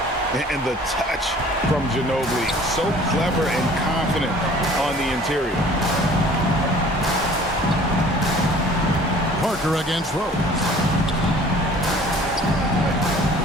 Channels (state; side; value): normal; both; correlation 0.50